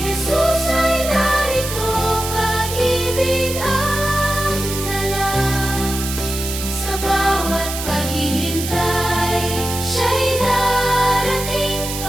ay narito, pag-ibig ang dala. Sa bawat paghihintay, siya'y darating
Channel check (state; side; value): noise; right; hiss, 6 dB below the sound